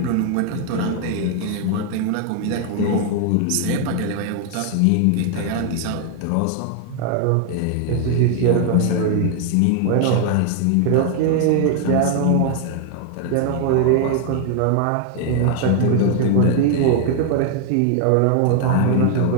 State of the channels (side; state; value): both; different; correlation 0.00